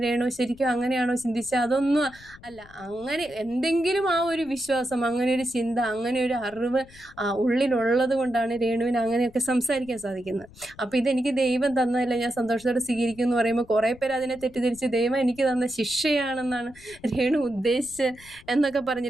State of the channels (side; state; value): left; noise; rumble, 23 dB below the sound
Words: രേണു ശരിക്കും അങ്ങനെയാണോ ചിന്തിച്ചത്? അതൊന്നും അല്ല. അങ്ങനെ എന്തെങ്കിലും ആ ഒരു വിശ്വാസം, അങ്ങനെ ഒരു ചിന്ത, അങ്ങനെ ഒരു അറിവ് ഉള്ളിലുള്ളത് കൊണ്ടാണ് രേണുവിന് അങ്ങനെയൊക്കെ സംസാരിക്കാൻ സാധിക്കുന്നത്. അപ്പോൾ ഇതെനിക്ക് ദൈവം തന്നതല്ല, ഞാൻ സന്തോഷത്തോടെ സ്വീകരിക്കും എന്ന് പറയുമ്പോൾ കുറേ പേര് അതിനെ തെറ്റിദ്ധരിച്ച് ദൈവം എനിക്ക് തന്ന ശിക്ഷയാണെന്നാണ് രേണു ഉദ്ദേശിച്ച് എന്നൊക്കെ